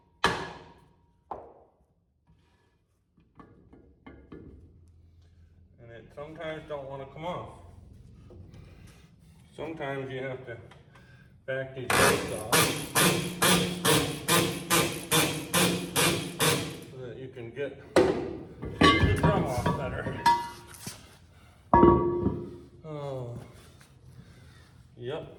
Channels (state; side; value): identical; both; correlation 1.00